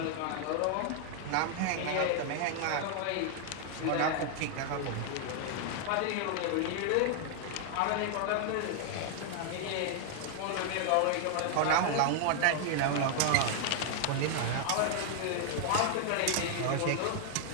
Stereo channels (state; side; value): different; both; correlation 0.00